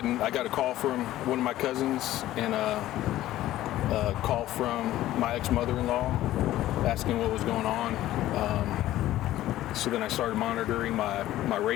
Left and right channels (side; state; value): right; quieter; 14.5 dB